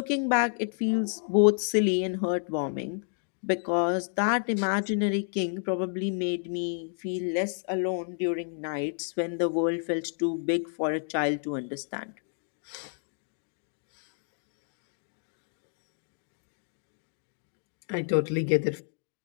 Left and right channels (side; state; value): right; silent; 58 dB below the other